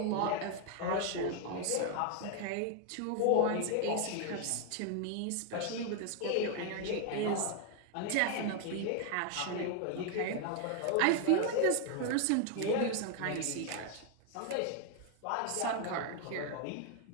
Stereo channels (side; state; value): both; different; correlation 0.00